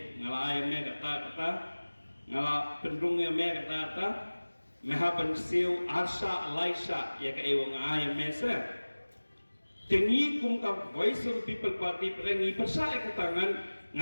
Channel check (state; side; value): inverted; both; correlation -1.00